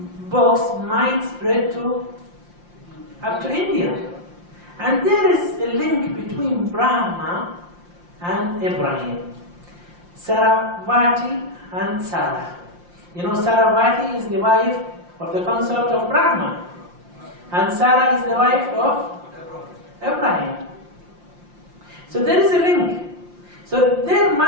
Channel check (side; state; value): left; late; 5.7 ms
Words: might spread up to India. And there is a link between Brahma and Ibrahim. Saravati and Sarah. You know, Saravati is the wife of the consort of Brahma. And Sarah is the wife of Abraham. So there is a link. So there